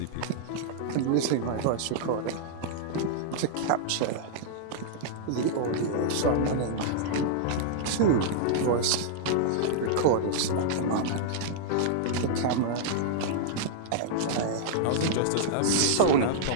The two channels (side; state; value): both; different; correlation -0.01